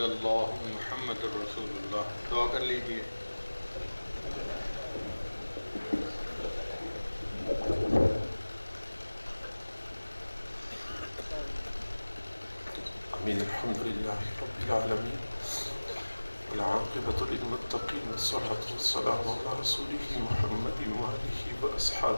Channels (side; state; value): both; inverted; correlation -1.00